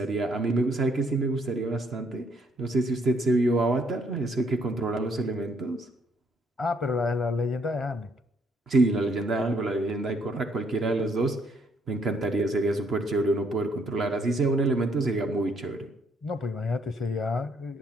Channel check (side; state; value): both; normal; correlation 0.69